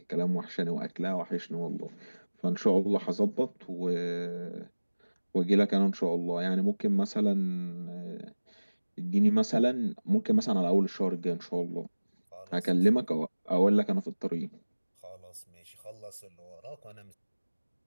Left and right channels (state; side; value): inverted; both; correlation -1.00